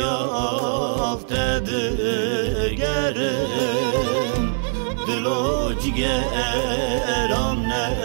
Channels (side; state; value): left; silent; 64 dB below the other